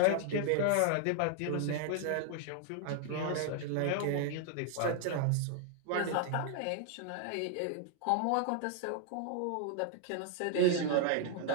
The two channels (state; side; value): different; both; correlation 0.00